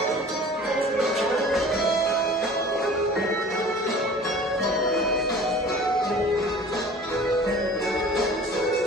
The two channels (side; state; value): both; normal; correlation 0.44